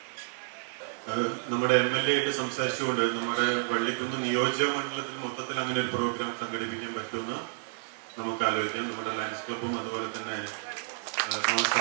നമ്മുടെ MLA ആയിട്ട് സംസാരിച്ചുകൊണ്ട് നമ്മുടെ വള്ളിക്കുന്ന് നിയോജക മണ്ഡലത്തിൽ മൊത്തത്തിൽ അങ്ങനെ ഒരു പ്രോഗ്രാം സംഘടിപ്പിക്കാൻ പറ്റുമെന്ന് നമുക്ക് ആലോചിക്കാം. നമ്മുടെ ലയൺസ് ക്ലബും അതുപോലെ തന്നെ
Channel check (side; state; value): left; silent; 58 dB below the other